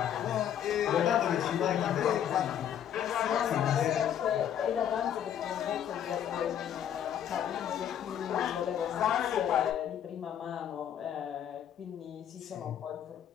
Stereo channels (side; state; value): right; quieter; 9.7 dB